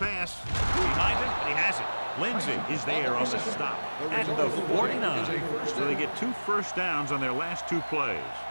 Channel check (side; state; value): both; inverted; correlation -1.00